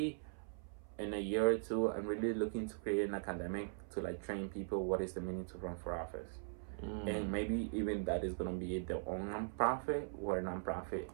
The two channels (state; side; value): silent; left; 51 dB below the other